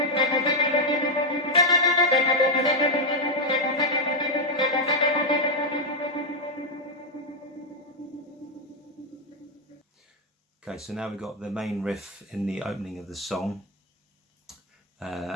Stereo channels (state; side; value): normal; both; correlation 0.01